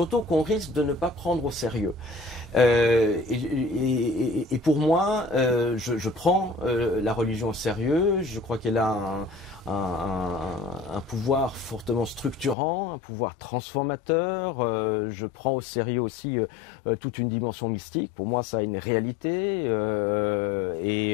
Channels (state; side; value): drops out; right; at 12.6 s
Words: qu'on risque de ne pas prendre au sérieux. Et pour moi, je prends la religion au sérieux. Je crois qu'elle a un pouvoir fortement structurant, un pouvoir transformateur. Je prends au sérieux aussi toute une dimension mystique. Pour moi, ça a une réalité.